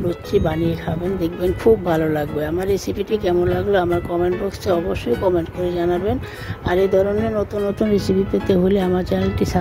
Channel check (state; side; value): identical; both; correlation 1.00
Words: লুচি বানিয়ে খাবেন, দেখবেন খুব ভালো লাগবে। আমার রেসিপিটি কেমন লাগলো আমার কমেন্ট বক্সে অবশ্যই কমেন্ট করে জানাবেন। আর এই ধরনের নতুন নতুন রেসিপি পেতে হলে আমার চ্যানেলটি